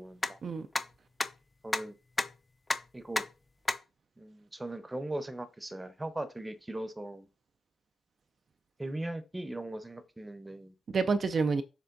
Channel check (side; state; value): both; normal; correlation 0.91